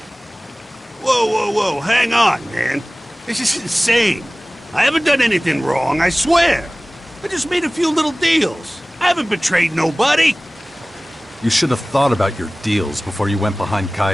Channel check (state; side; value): normal; both; correlation 0.98